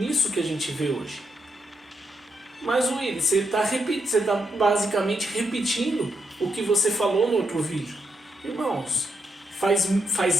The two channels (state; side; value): normal; both; correlation 0.81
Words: que a gente vê hoje. Mas Willy, você está basicamente repetindo o que você falou no outro vídeo. Irmãos,